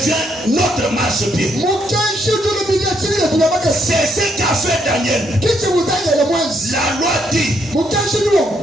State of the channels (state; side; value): normal; both; correlation 0.74